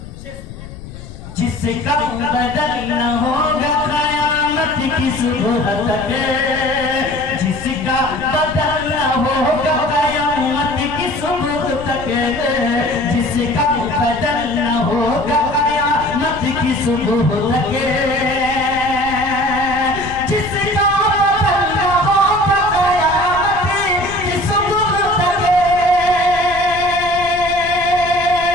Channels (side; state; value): left; noise; rumble, 14 dB below the sound